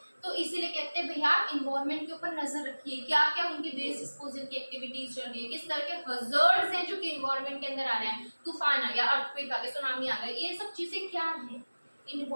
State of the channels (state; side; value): inverted; both; correlation -1.00